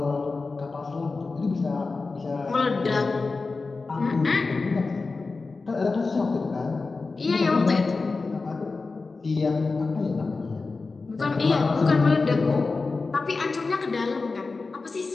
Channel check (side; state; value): right; quieter; 4.0 dB